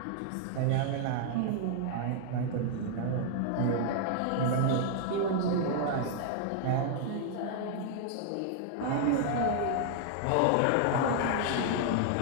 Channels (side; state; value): both; different; correlation 0.00